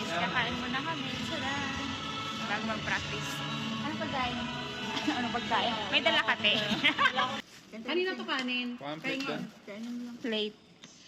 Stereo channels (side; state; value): both; identical; correlation 1.00